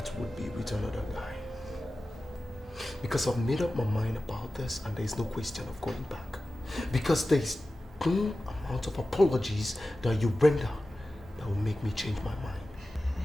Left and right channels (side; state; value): both; normal; correlation 0.95